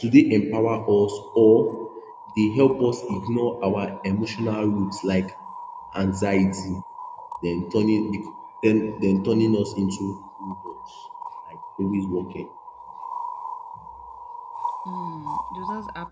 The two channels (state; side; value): identical; both; correlation 1.00